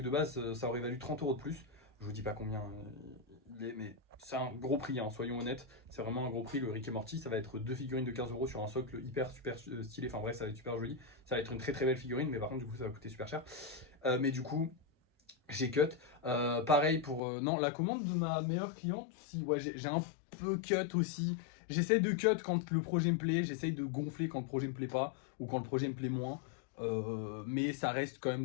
de base, ça aurait valu 30 € de plus. Je vous dis pas combien il est, mais c'est un gros prix, hein, soyons honnêtes. C'est vraiment un gros prix. Le Rick et Morty, ça va être deux figurines de 15 € sur un socle hyper super stylé. Enfin bref, ça va être super joli. Ça va être une très très belle figurine, mais par contre, du coup, ça va coûter super cher. Mais du coup, j'ai cut. Pareil pour. Non, la commande de ma meilleure cliente, si, ouais, j'ai un peu cut aussi. J'essaie de cut quand le projet me plaît, j'essaie de gonfler quand le projet me plaît pas, ou quand le projet me plaît moins. Mais ça reste quand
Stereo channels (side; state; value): right; drops out; at 17.2 s